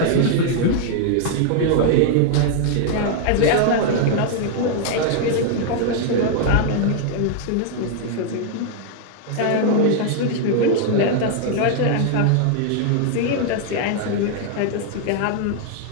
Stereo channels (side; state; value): both; different; correlation 0.00